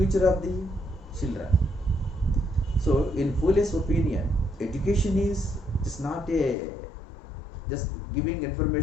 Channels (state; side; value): drops out; right; at 6.6 s